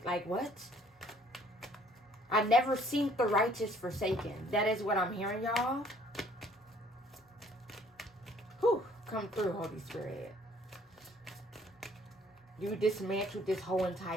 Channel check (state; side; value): normal; both; correlation 0.59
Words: Like, what? I never seen the righteous forsaken. That is what I'm hearing, y'all. Whew. Come through, Holy Spirit. You dismantled this whole